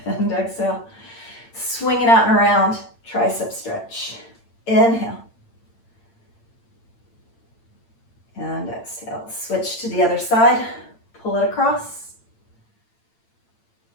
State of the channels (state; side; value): late; right; 8.8 ms